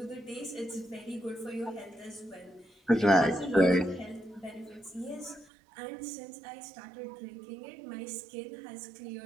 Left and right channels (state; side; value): drops out; left; at 5.5 s